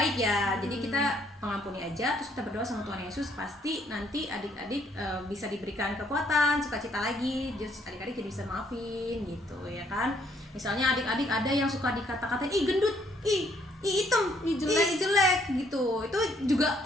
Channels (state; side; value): normal; both; correlation 0.67